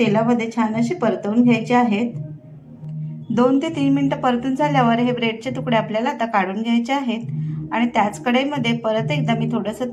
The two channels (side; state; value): both; identical; correlation 1.00